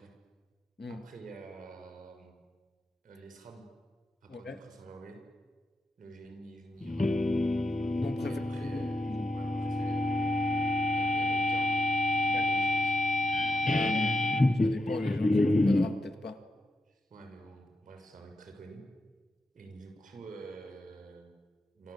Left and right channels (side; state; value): both; normal; correlation 0.85